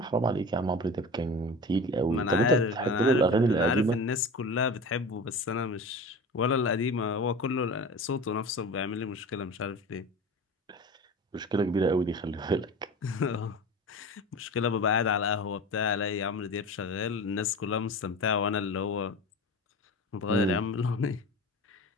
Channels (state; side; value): normal; both; correlation 0.33